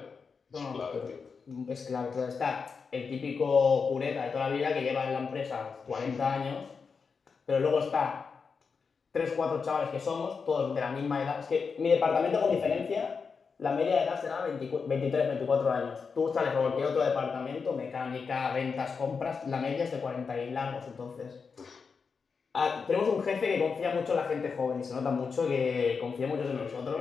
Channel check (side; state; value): right; quieter; 5.4 dB